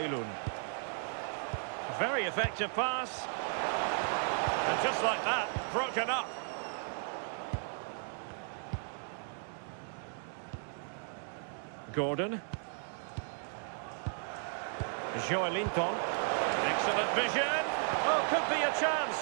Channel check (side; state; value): left; silent; 54 dB below the other